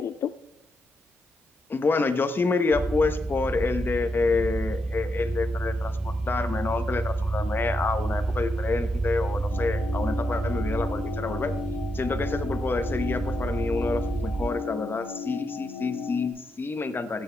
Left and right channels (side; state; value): both; normal; correlation 0.83